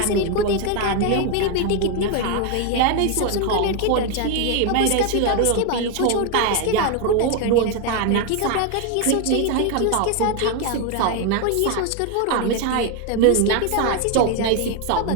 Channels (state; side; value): different; both; correlation 0.01